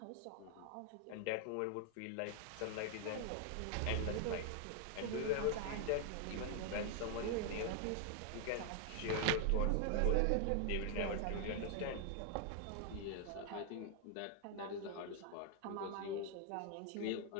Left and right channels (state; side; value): different; both; correlation 0.00